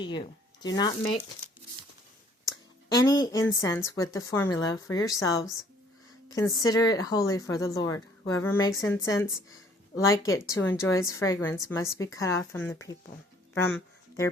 you. Do not make any incense with the formula for yourselves. Consider it holy for the Lord. Whoever makes incense like it to enjoy its fragrance must be cut off from their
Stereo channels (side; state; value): both; normal; correlation 0.59